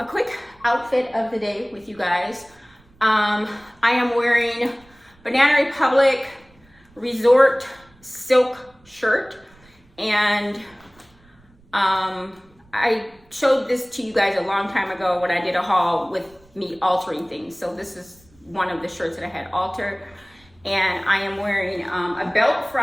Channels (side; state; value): right; noise; rumble, 30 dB below the sound